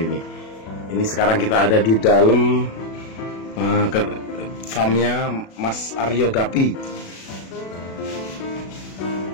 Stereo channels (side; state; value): right; late; 36 ms